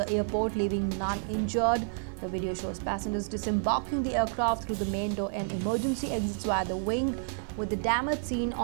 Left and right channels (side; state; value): left; silent; digital silence